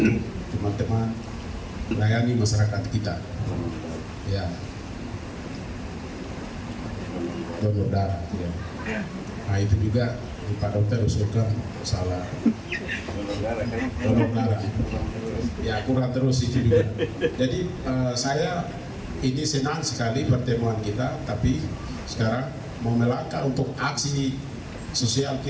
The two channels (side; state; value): both; identical; correlation 1.00